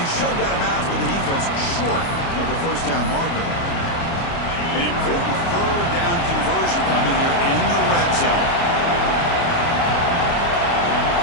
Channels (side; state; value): right; late; 29 ms